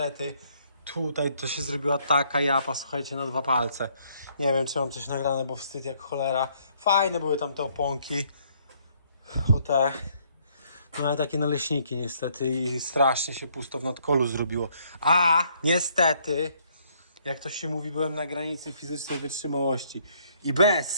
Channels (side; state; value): both; inverted; correlation -0.67